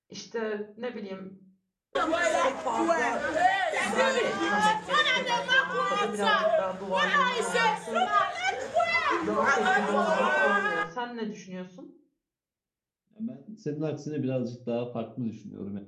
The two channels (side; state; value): both; identical; correlation 1.00